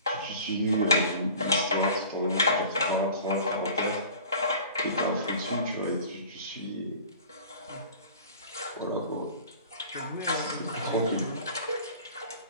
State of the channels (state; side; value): inverted; both; correlation -0.43